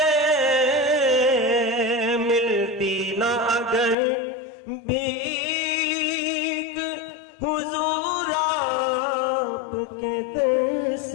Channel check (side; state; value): right; drops out; at 4.0 s